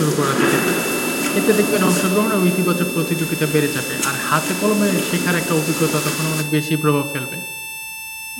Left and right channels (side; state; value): both; identical; correlation 1.00